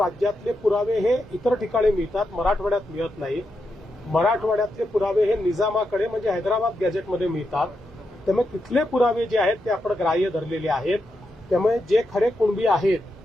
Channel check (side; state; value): both; normal; correlation 0.85